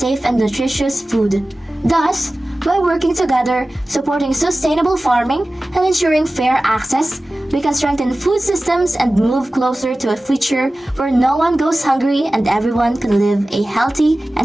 and nutritious food. Thus, by working together, supporting sustainable farming, and ensuring fair access, we can strengthen food systems and move closer to a future where no one goes hungry and everyone can live a healthy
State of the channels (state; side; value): normal; both; correlation 0.96